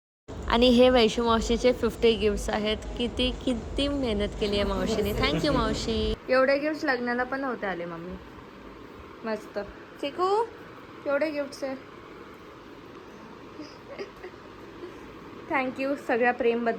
आणि हे वैशू मावशीचे 50 गिफ्ट्स आहेत. किती मेहनत केली आहे मावशीने. थँक्यू मावशी. एवढे गिफ्ट लग्नाला पण नव्हते आले मम्मी. मस्त. चिकू, एवढे गिफ्ट्स आहे. थँक्यू सगळ्या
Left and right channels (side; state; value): both; identical; correlation 1.00